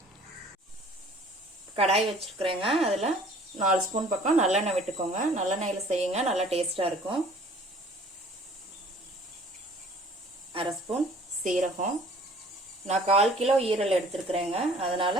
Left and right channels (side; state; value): both; normal; correlation 0.52